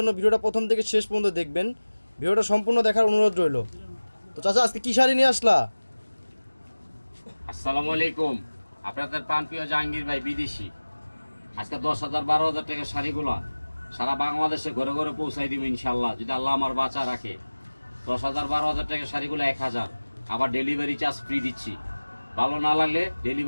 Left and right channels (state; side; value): inverted; both; correlation -1.00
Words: ভিডিওটা প্রথম থেকে শেষ পর্যন্ত দেখবেন। ভিডিওটা সম্পূর্ণ দেখার অনুরোধ রইল। তো চাচা, আজকে কী শাড়ি নিয়ে আসলা? আসসালামু আলাইকুম। আপনাদের প্রাণপ্রিয় জাহাঙ্গীর ভাই বিদেশি। আজকে 10,000 12,000 টাকার শাড়িগুলো সারা বাংলাদেশে ঘরে ঘরে পৌঁছাই দিব ইনশাল্লাহ, যদি আল্লাহ আমার বাঁচা রাখে। 10,000 12,000 টাকার শাড়িগুলো 1,000, আবার ডেলিভারি চার্জ ফ্রি দিচ্ছি। ভালো না লাগলে